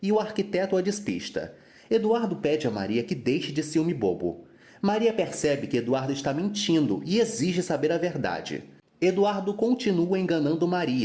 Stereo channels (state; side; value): identical; both; correlation 1.00